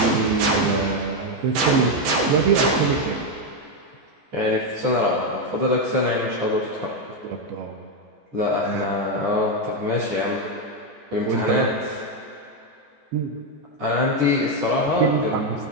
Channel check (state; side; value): late; left; 14 ms